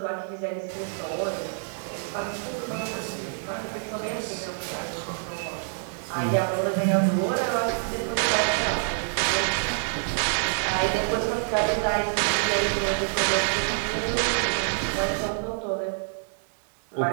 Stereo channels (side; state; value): left; silent; digital silence